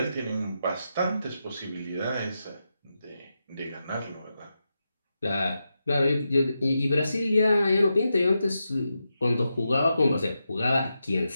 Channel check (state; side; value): inverted; both; correlation -0.88